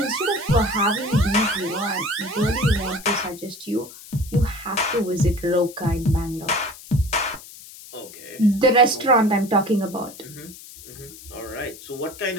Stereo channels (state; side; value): noise; left; hiss, 17 dB below the sound